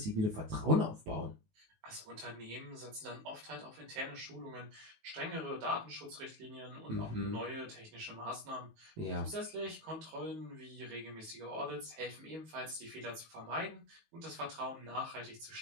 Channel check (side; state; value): left; late; 19 ms